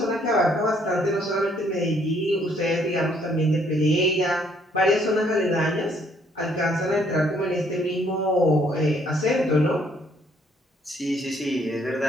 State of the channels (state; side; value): normal; both; correlation 0.66